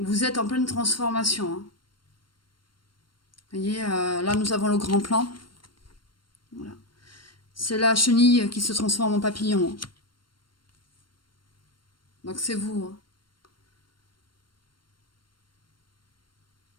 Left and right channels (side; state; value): right; late; 0.72 ms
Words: êtes en pleine transformation, hein. Vous voyez, là, nous avons le grand plan. Voilà. C'est la chenille qui se transforme en papillon, hein. Donc c'est vous, hein.